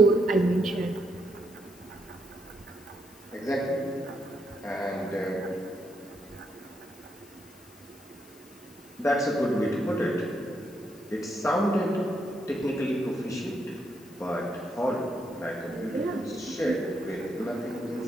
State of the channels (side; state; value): left; noise; hiss, 23 dB below the sound